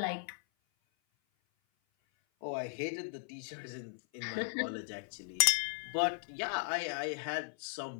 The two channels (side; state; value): right; silent; 53 dB below the other